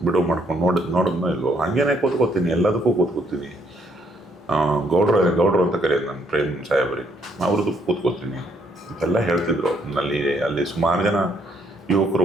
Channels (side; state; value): both; normal; correlation 0.69